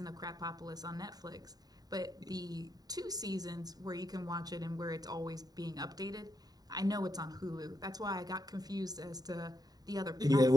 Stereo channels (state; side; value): late; left; 0.19 ms